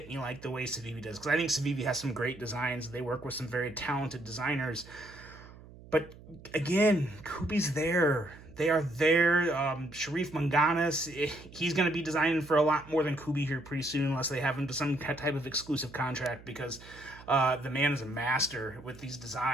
me like the way Civivi does, because I think Civivi has some great designs. They work with some very talented designers. But again, Kubey's there. They are there. Sharif Manganis, he's going to be designing for a lot more than Kubey here pretty soon, unless they have him to some type of exclusive contract, because the man is a master with these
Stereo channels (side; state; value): right; noise; hum, 19 dB below the sound